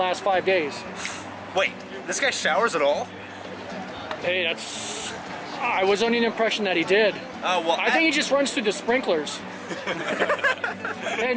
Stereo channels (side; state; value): both; identical; correlation 1.00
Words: 5 days? Wait, this guy showers at all? Hey, I was under the impression that he did. Well, I think he just runs through the sprinklers. Hey,